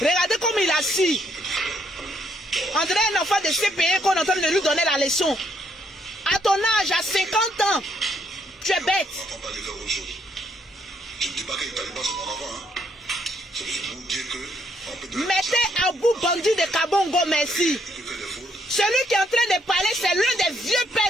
Regardez comme il est assis. On dirait un enfant de CPE qu'on est en train de lui donner la leçon. À ton âge, à 50 ans, tu es bête. On va pas parler de autre chose. Je ne dis pas que les talibans c'est mon enfant. Hein. C'est juste pour vous dire que... Mettez à bout bandit de Kabongo, merci. Celui qui est en train de parler, c'est l'un des vieux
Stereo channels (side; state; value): both; normal; correlation 0.71